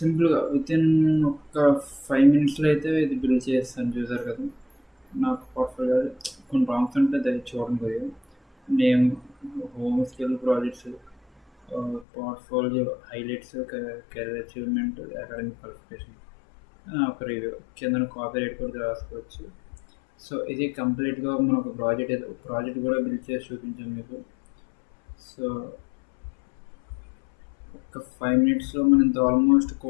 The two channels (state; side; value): drops out; right; at 12.1 s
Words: వితిన్ ఒక 5 మినిట్స్లో అయితే ఇది బిల్డ్ చేస్తాను. చూసారు కదా, నాకు పోర్ట్ఫోలియో కొన్ని ప్రాంప్ట్స్ ఉంటే అది చూడండి కొద్దిగా. Name, home skill projects, portfolio highlights, career achievement, academic qualification, ఒక రివ్యూ కింద కాపీ రైట్ కూడా రాసుకోవచ్చు. సో ఇది కంప్లీట్గా మనం ఒక ప్రాజెక్ట్ కూడా బిల్డ్ చేసి చూపించాం మీకు. సో ఒక 5 మినిట్స్లో మనం ఇంత ఆల్మోస్ట్